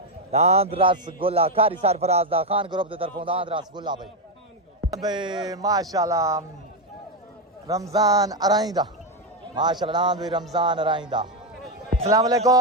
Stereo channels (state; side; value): normal; both; correlation 0.06